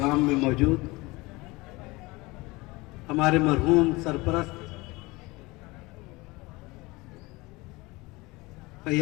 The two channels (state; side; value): quieter; right; 22.9 dB